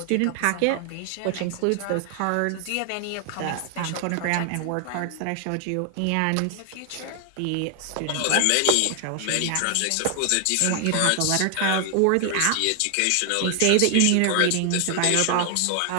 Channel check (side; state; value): both; different; correlation 0.00